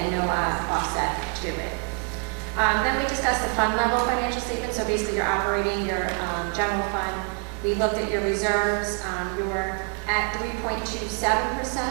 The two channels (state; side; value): quieter; left; 38.9 dB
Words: and no offset to it. Then we discussed the fund level financial statement, so basically your operating, your general fund. We looked at your reserves. You're at 3.27%,